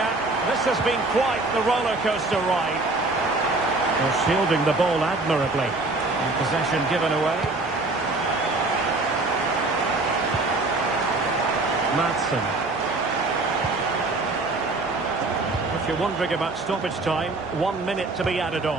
This has been quite the roller coaster ride. They're shielding the ball admirably. And possession given away. Madsen. If you're wondering about stoppage time, 1 minute to be added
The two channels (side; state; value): left; quieter; 3.2 dB